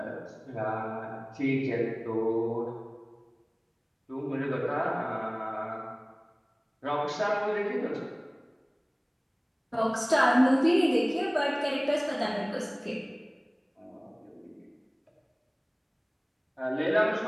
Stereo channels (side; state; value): both; identical; correlation 1.00